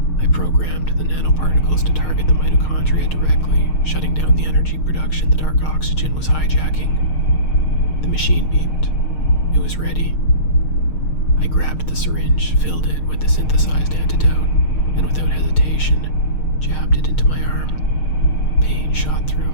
I programmed the nanoparticles to target the mitochondria directly, shutting down the energy production the dark oxygen was hijacking. The machine beeped. It was ready. I grabbed the syringe, filled it with the synthesized antidote, and without hesitation, jabbed it into my arm. Pain shot through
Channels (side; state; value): right; late; 6.5 ms